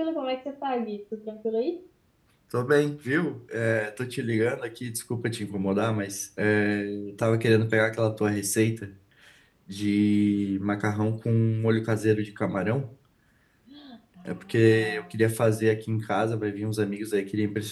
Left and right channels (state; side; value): identical; both; correlation 1.00